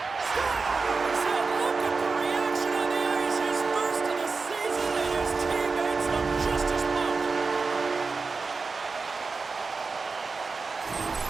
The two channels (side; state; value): left; quieter; 4.4 dB